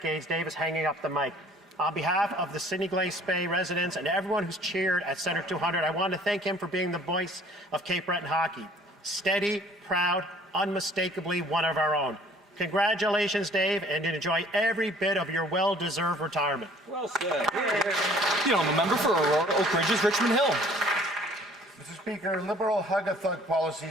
Dave is hanging up the mic. On behalf of the Sydney Glace Bay residents and everyone who's cheered at Centre 200, I want to thank him for being the voice of Cape Breton hockey. Steady, proud, unmistakably one of our own. Congratulations, Dave, and enjoy every bit of your well-deserved retirement. Well said. The member for Aurora Oak Ridges, Richmond Hill. Mr. Speaker, Liberal hug-a-thug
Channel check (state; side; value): normal; both; correlation 0.54